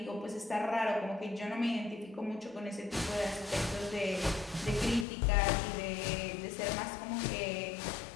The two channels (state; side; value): drops out; right; at 5.1 s